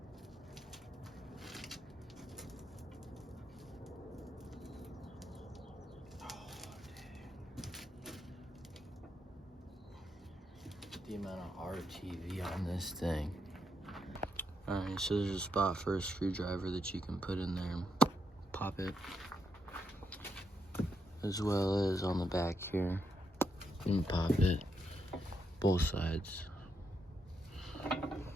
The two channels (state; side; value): normal; both; correlation 0.80